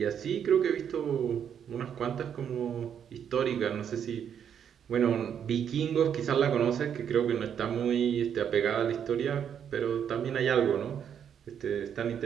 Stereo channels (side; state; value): left; quieter; 8.4 dB